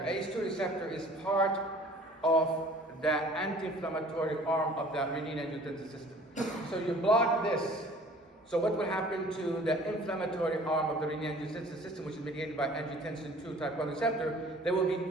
ACE2 receptor is part of the anti-inflammatory arm of the renin-angiotensin system. So you block this. So what will happen to the inflammatory arm of the renin-angiotensin system, which is mediated by angiotensin 2 type 1 receptor? They will be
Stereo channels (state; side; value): normal; both; correlation 0.50